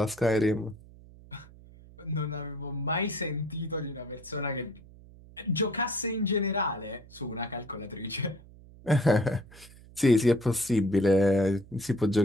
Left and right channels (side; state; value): right; noise; hum, 21 dB below the sound